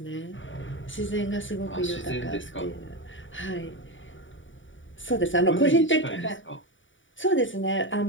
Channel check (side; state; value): right; late; 0.56 ms